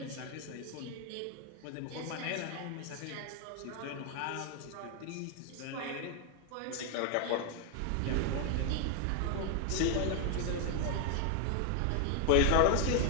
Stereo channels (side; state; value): both; different; correlation 0.01